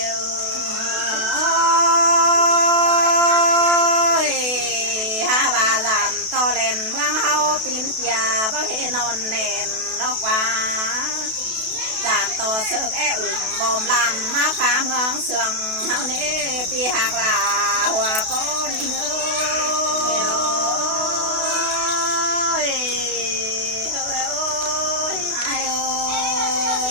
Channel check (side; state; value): left; late; 32 ms